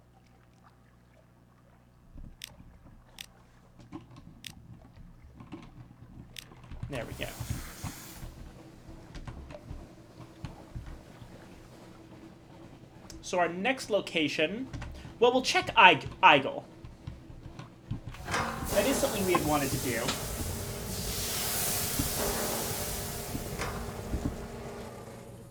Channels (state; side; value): identical; both; correlation 1.00